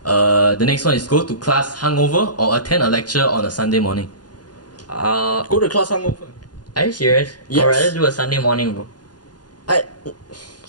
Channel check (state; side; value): late; right; 0.69 ms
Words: The next one is go to class hungover or attend a lecture on a Sunday morning. Go to class hungover. Are you serious? Yes. I'd rather do a Sunday morning, bro.